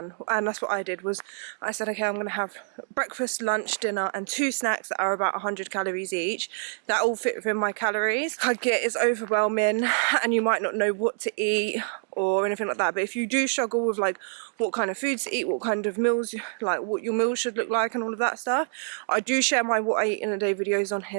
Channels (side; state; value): left; silent; 61 dB below the other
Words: And that's what I did, was I said, okay, I'm gonna have breakfast, lunch, dinner and 2 snacks that are about 100 calories each. That all fit within my calories. I get it's overwhelming and you might not know what to eat or anything like that, but if you do struggle with like what kind of foods to eat, what kind of meals, like what your meals should look like and all of that stuff, I do share my what I eat in a day videos on